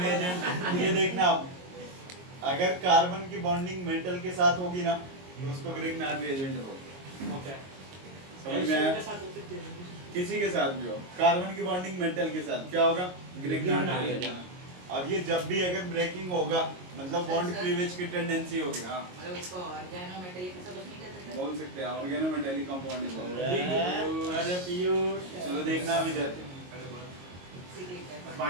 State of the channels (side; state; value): left; late; 22 ms